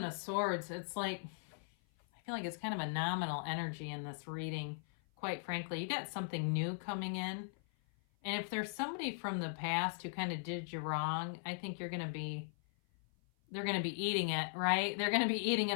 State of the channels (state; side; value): silent; right; 52 dB below the other